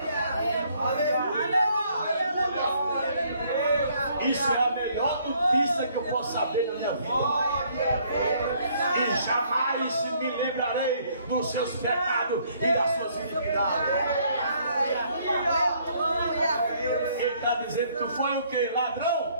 Isso é a melhor notícia que eu posso saber na minha vida. E jamais me lembrarei dos seus pecados e das suas iniquidades. Ele está dizendo que tu foi o que?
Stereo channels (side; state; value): both; inverted; correlation -0.65